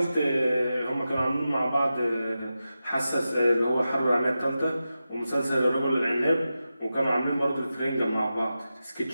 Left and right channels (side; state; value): both; inverted; correlation -0.92